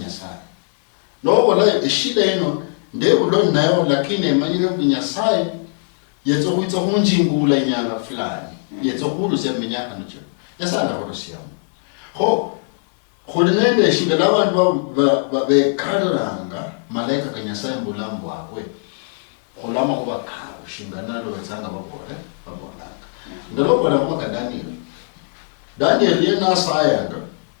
no bola shida ino ndebulo nayo lakini emanyire kunyasaya yetso kuitsa kunjingula nyanga fulani yetso kulusi eminyaka nocho yasala kulusi yamu ho kholinende shinga labantu bekaranga malaika kanyasaya mbulambo akwe kolama kuba kawo shingana lo wenzanga babolanga ndalo bona kwa Daniel yena sayanga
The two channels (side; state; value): right; silent; digital silence